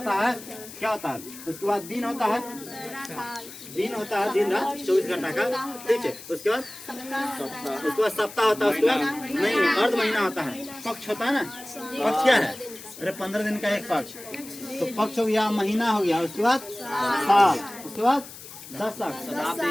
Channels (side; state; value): left; noise; hiss, 15 dB below the sound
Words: है, क्या होता है? उसके बाद दिन होता है, दिन होता है, दिन रात 24 घंटा का, ठीक है। उसके बाद सप्ताह होता है, उसके बाद नहीं, अर्ध महीना होता है, पक्ष होता है ना। पक्ष क्या है? अरे 15 दिन का एक पक्ष, तो पक्ष हो गया, महीना हो गया, उसके बाद साल, उसके बाद दशक,